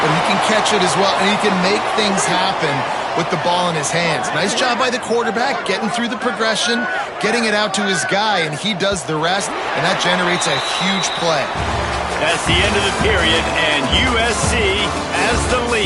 but he can catch it as well, and he can make things happen with the ball in his hands. Nice job by the quarterback, getting through the progression, getting it out to his guy, and he does the rest, and that generates a huge play. That's the end of the period, and USC has the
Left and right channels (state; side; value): identical; both; correlation 1.00